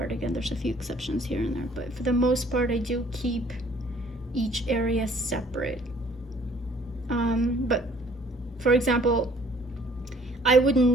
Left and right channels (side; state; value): both; normal; correlation 0.58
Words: again, there's a few exceptions here and there, but for the most part I do keep each area separate. But for example, I would